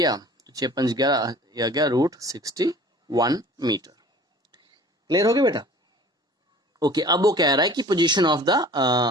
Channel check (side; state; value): both; normal; correlation 0.46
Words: तो 6 5 11, यह गया √61 मीटर। क्लियर हो गया बेटा? ओके, अब वो कह रहा है कि position of the